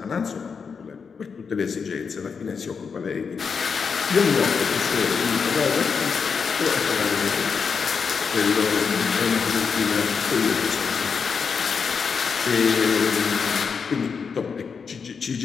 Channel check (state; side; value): quieter; right; 5.8 dB